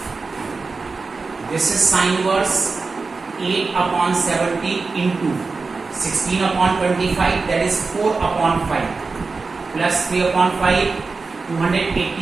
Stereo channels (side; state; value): left; quieter; 4.2 dB